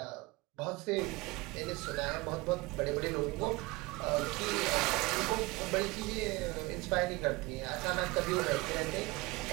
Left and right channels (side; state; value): left; quieter; 23.1 dB